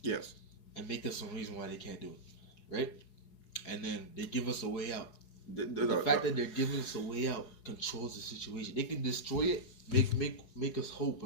Yes. And make us some reason why they can't do it, right? And then they give us a way out. The fact that they're giving us a way out controls the situation. They can destroy it, make us hope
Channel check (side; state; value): right; late; 4.8 ms